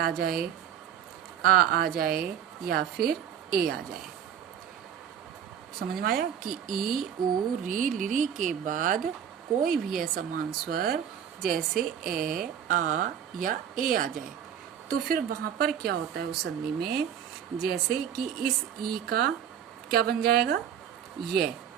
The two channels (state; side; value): quieter; left; 9.0 dB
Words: जाए, आ जाए या फिर ए आ जाए। समझ में आया कि ई ओ री लिरी के बाद कोई भी असमान स्वर जैसे ए आ या ए आ जाए, तो फिर वहां पर क्या होता है उस संधि में, जैसे कि इस ई का क्या बन जाएगा, ये